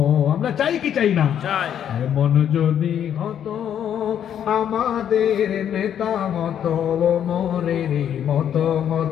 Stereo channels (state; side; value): quieter; right; 9.5 dB